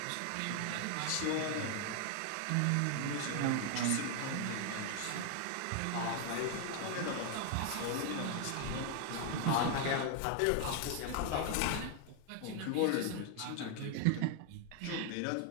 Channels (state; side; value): different; both; correlation 0.00